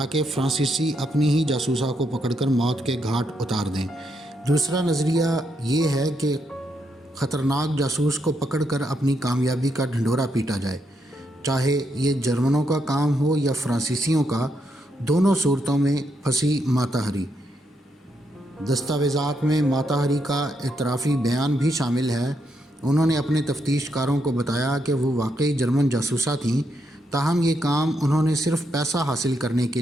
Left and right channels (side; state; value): both; normal; correlation 0.79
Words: فرانسیسی اپنی ہی جاسوسا کو پکڑ کر موت کے گھاٹ اتار دیں۔ دوسرا نظریہ یہ ہے کہ خطرناک جاسوس کو پکڑ کر اپنی کامیابی کا ڈھنڈورا پیٹا جائے، چاہے یہ جرمنوں کا کام ہو یا فرانسیسیوں کا۔ دونوں صورتوں میں پھنسی ماتا ہری۔ دستاویزات میں ماتا ہری کا اعترافی بیان بھی شامل ہے۔ انہوں نے اپنے تفتیش کاروں کو بتایا کہ وہ واقعی جرمن جاسوسہ تھیں، تاہم یہ کام انہوں نے صرف پیسہ حاصل کرنے کے